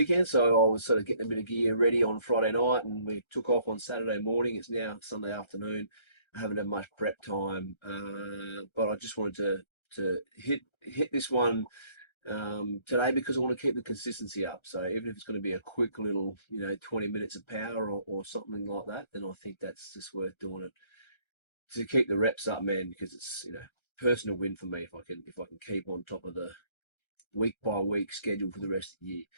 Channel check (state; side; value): late; right; 1.3 ms